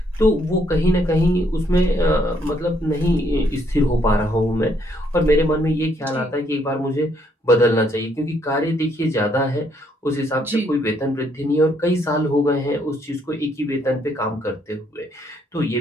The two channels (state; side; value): normal; both; correlation 0.70